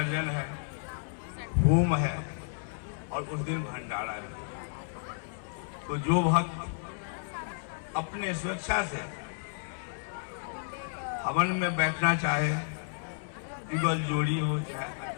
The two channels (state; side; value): silent; right; 57 dB below the other